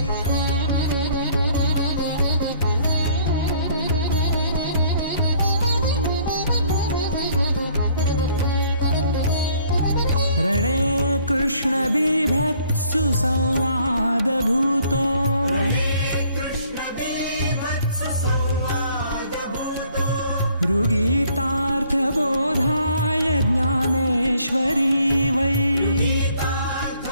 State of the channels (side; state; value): both; inverted; correlation -0.61